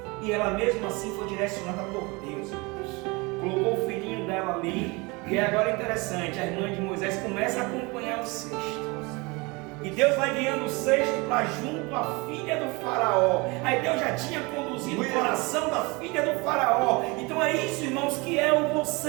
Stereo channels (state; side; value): quieter; left; 26.3 dB